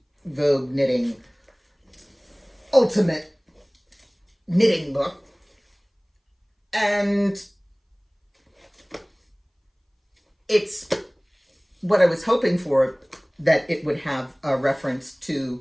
Vogue Knitting Ultimate Knitting book, and it's what I was hoping for, that it would have a reference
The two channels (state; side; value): identical; both; correlation 1.00